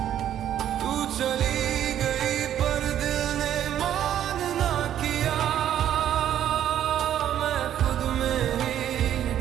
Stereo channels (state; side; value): quieter; left; 10.8 dB